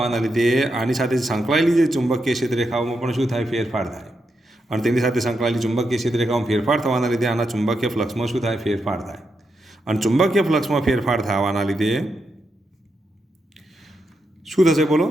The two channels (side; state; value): both; normal; correlation 0.84